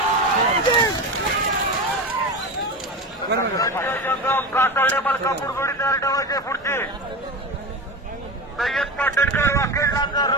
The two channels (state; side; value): normal; both; correlation 0.24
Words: कातरडे मलकापूर जोडी तयार ठेवायचे. पुढची सय्यद पाटणकर वाकेडला